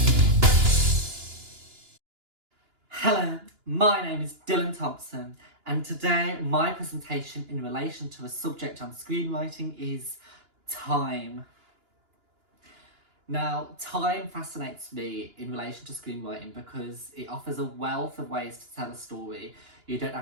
Hello, my name is Dylan Thompson, and today my presentation in relation to a subject on screenwriting is time. Now, time fascinates me in relation to screenwriting because it offers a wealth of ways to tell a story. You don't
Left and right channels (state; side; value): late; left; 2.9 ms